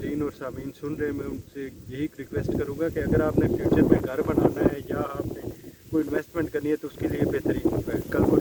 और सामीन सुन रहे हैं, मैं उनसे यही रिक्वेस्ट करूँगा कि अगर आपने फ्यूचर में घर बनाना है या आपने कोई इन्वेस्टमेंट करनी है तो उसके लिए बेहतरीन होगा। कल को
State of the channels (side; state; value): both; identical; correlation 1.00